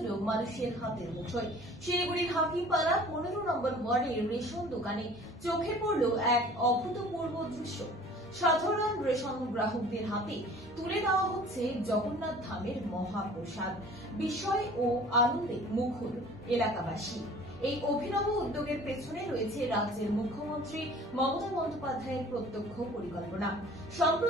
মানুষের হাতের মুঠোয়। শিলিগুড়ির হাকিমপাড়া 15 নম্বর ওয়ার্ডের রেশন দোকানে চোখে পড়ল এক অভূতপূর্ব দৃশ্য। সাধারণ রেশন গ্রাহকদের হাতে তুলে দেওয়া হচ্ছে জগন্নাথ ধামের মহাপ্রসাদ। বিস্ময় ও আনন্দে মুখর এলাকাবাসী। এই অভিনব উদ্যোগের পেছনে রয়েছে রাজ্যের মুখ্যমন্ত্রী মমতা বন্দ্যোপাধ্যায়ের প্রত্যক্ষ পরিকল্পনা।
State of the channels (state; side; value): noise; right; hum, 25 dB below the sound